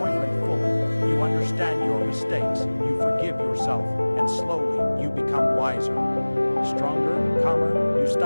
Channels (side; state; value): both; inverted; correlation -1.00